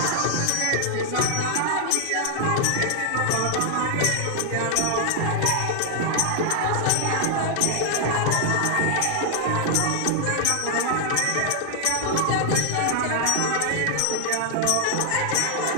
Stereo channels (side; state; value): both; different; correlation 0.00